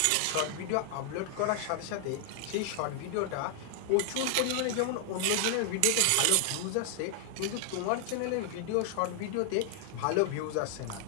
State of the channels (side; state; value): both; different; correlation 0.00